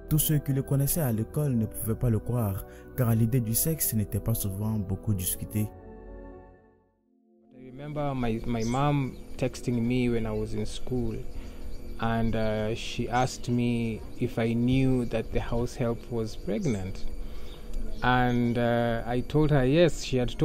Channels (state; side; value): identical; both; correlation 1.00